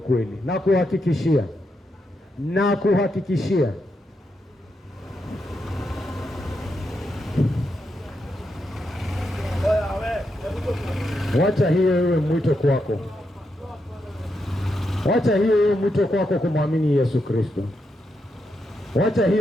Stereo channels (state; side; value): normal; both; correlation 0.83